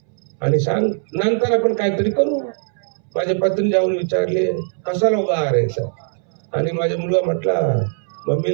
आणि सांग, नंतर आपण काहीतरी करू. माझ्या पत्नी जाऊन विचारले, कसाला उभा आहे सर? आणि माझा मुलगा म्हटला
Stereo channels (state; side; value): silent; left; 66 dB below the other